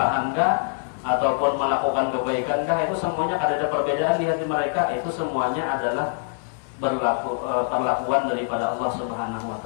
kah ataupun melakukan kebaikan kah, itu semuanya kada ada perbedaan di hati mereka. Itu semuanya adalah perlakuan daripada Allah Subhanahu wa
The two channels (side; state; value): right; silent; 62 dB below the other